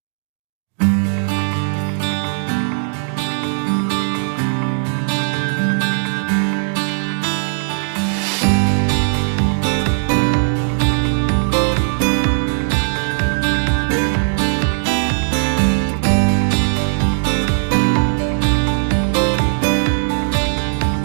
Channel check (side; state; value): left; silent; digital silence